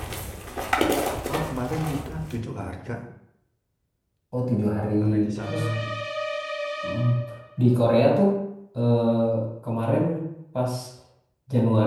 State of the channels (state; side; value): identical; both; correlation 1.00